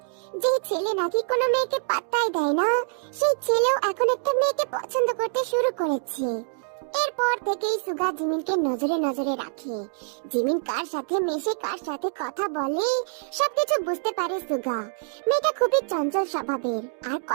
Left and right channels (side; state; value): left; silent; digital silence